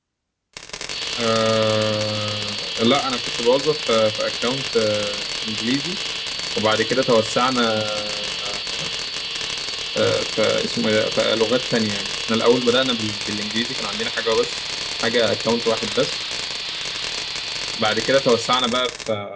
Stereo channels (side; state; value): both; identical; correlation 1.00